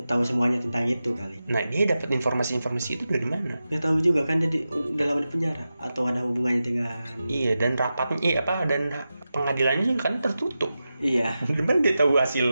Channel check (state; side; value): inverted; both; correlation -0.92